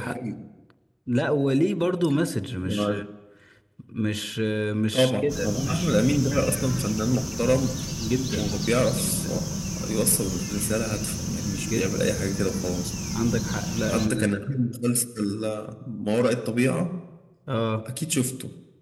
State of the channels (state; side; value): identical; both; correlation 1.00